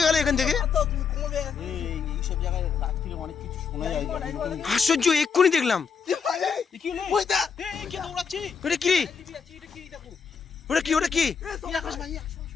গেল এখান থেকে। এইসব জায়গায় রাত্রিরে অনেক কিছু শোনা যায়। আশ্চর্য, এক্ষুনি দেখলাম। কি হলো? ওইটা এই কে দৌড়াচ্ছে? ওটা কি? এটা কি দেখো? ওটা কি? ওটা কি? এই আকাশ ভাই, আসো,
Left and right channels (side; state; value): right; quieter; 6.1 dB